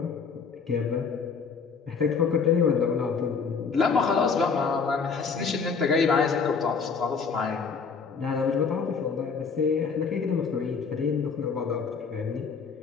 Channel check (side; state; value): right; quieter; 5.5 dB